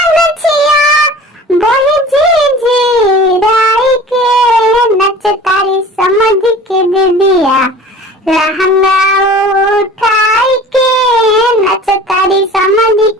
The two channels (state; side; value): normal; both; correlation 0.42